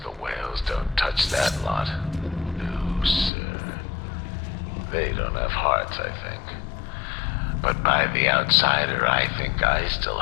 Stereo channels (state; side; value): drops out; right; at 3.3 s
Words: the whales don't touch that lot. No, sir. They don't have hearts, I think. But by the outsider, I think I still